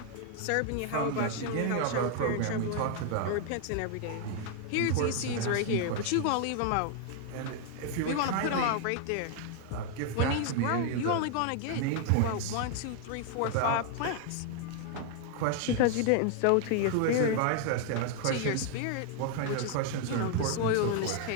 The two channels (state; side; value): different; both; correlation 0.00